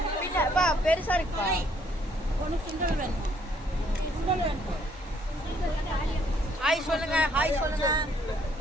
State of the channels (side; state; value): both; normal; correlation 0.66